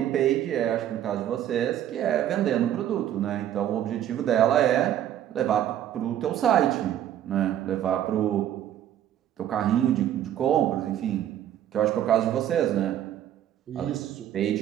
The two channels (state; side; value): quieter; left; 11.2 dB